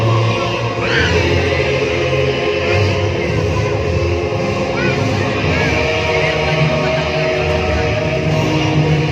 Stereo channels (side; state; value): both; identical; correlation 1.00